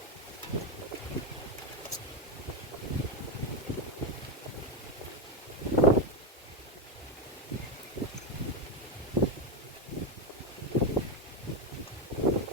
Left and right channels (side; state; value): both; normal; correlation 0.08